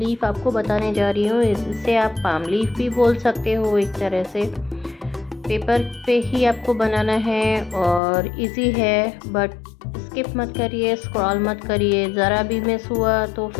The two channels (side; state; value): right; drops out; at 8.0 s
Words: आपको बताने जा रही हूँ। इसे आप पाम लीफ भी बोल सकते हो एक तरह से। पेपर पे ही आपको बनाना है और इजी है, बट स्किप मत करिए, स्क्रॉल मत करिए। ज़रा भी मिस हुआ तो